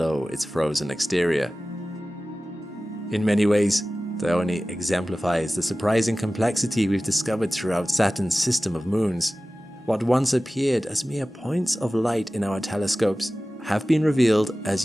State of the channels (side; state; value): both; normal; correlation 0.96